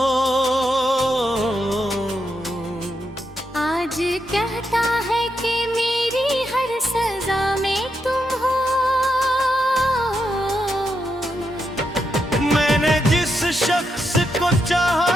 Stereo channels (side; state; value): both; normal; correlation 0.83